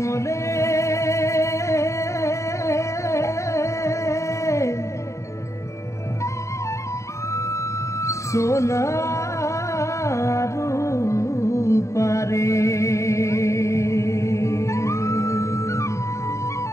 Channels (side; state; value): right; late; 0.14 ms